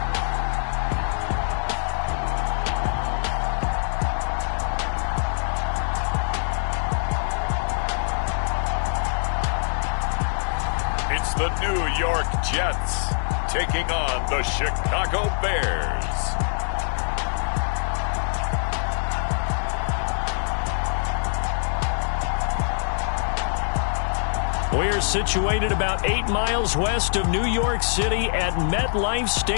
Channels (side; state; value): right; silent; 63 dB below the other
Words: It's the New York Jets taking on the Chicago Bears. We're situated about 8 miles west of New York City at MetLife